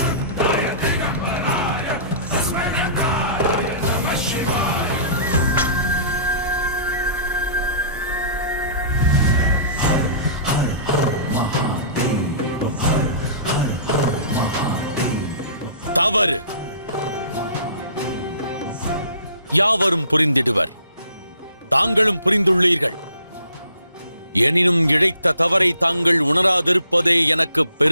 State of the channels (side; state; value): both; inverted; correlation -0.49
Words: தவறு. யாவரும் புரிந்திடுவர். தாங்களும் புரிந்துள்ளீர்கள். எனினும் இழைத்த தவறை தாங்கள் உணராதிருப்பதே எனக்கு